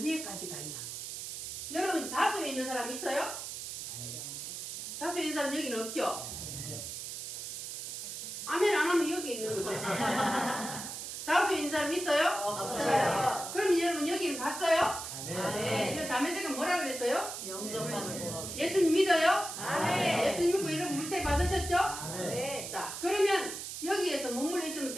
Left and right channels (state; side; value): noise; right; hiss, 7 dB below the sound